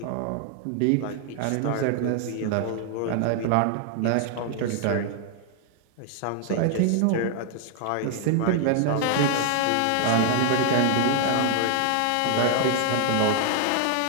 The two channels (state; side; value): different; both; correlation 0.00